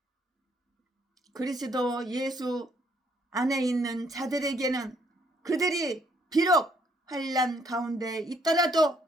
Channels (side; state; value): both; normal; correlation 0.68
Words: 그리스도 예수 안에 있는 자들에게는 그들이 비록 환난 가운데 있더라도